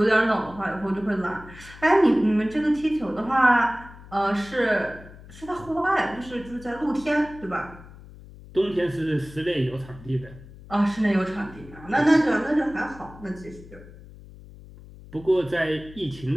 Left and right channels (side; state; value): left; noise; hum, 19 dB below the sound